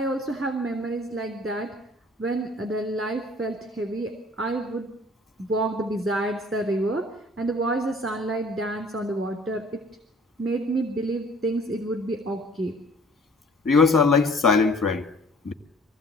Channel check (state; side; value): normal; both; correlation 0.53